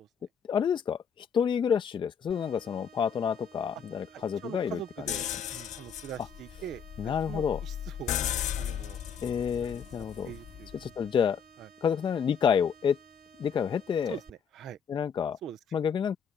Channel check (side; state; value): right; quieter; 6.9 dB